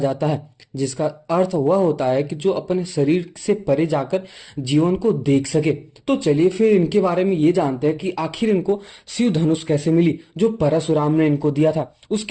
है, जिसका अर्थ वह होता है कि जो अपने शरीर से परे जाकर जीवन को देख सके। तो चलिए फिर इनके बारे में ये जानते हैं कि आखिर इनको शिव धनुष कैसे मिली, जो परशुराम ने इनको दिया था।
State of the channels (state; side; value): identical; both; correlation 1.00